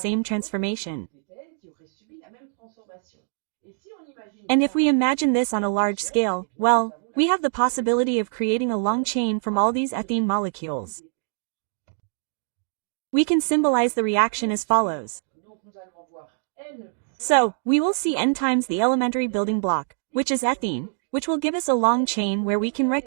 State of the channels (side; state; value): left; silent; digital silence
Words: transformation. And if we imagine this on a large scale, well, we have the possibility of creating a long chain from all these ethene molecules. We can symbolize the reaction as follows. So, we will see N times the elementary building block, which is ethene, which will give us a long chain where we can